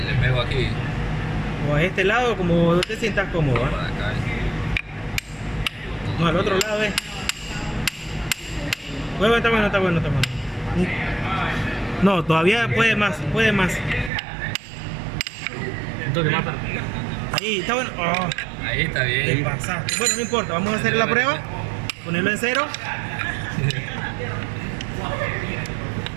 pego aquí. O a este lado, como te sientas cómodo, ¿va? Por acá. No, al otro lado es. Bueno, está bueno. No, todavía puede más. Un toque más para. Ahí, está bueno. Oh, Ahí está te bien. pasaste. Bueno, no importa, vamos a hacer la prueba. Ponerlo en cero.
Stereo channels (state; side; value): drops out; left; at 14.1 s